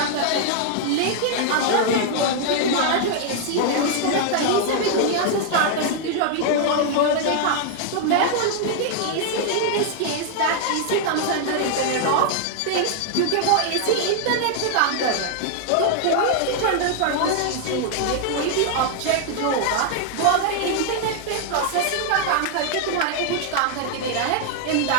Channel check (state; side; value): different; both; correlation 0.00